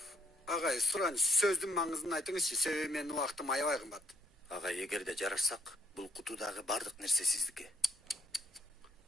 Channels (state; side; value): normal; both; correlation 0.68